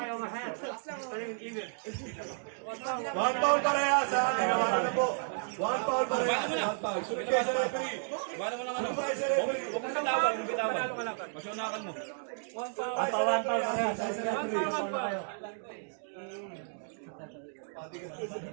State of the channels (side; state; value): left; silent; digital silence